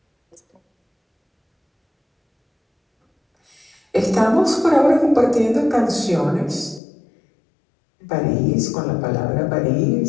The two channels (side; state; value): right; drops out; at 6.8 s